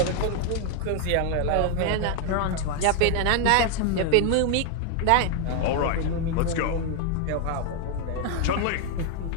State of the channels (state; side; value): different; both; correlation 0.00